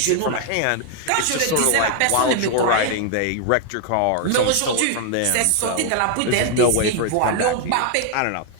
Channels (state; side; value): different; both; correlation 0.00